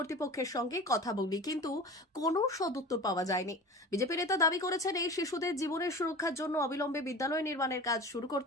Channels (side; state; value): both; normal; correlation 0.36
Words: সঙ্গে কথা বলি, কিন্তু কোনো সদুত্তর পাওয়া যায়নি। বিজেপি নেতা দাবি করেছেন, এই শিশুদের জীবনের সুরক্ষার জন্য অবিলম্বে বিদ্যালয় নির্মাণের কাজ শুরু